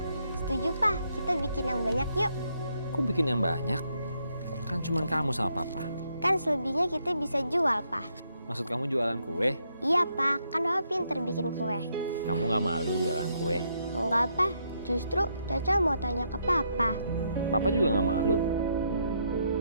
Setuju, Pak. Kita bikin yang banyak yuk. Kok bikin yang banyak? Kan cuma kamu sama Papa. Kan selebihnya kita bisa jual, Pak. Maksud kamu jualan kue? Iya, Pak. Kan Papa pinter bikin kue. Kamu nggak malu jualan kue? Enggak, Pak. Justru Caca mau tanya ke Papa. Papa juga nggak malu.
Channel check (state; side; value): inverted; both; correlation -0.76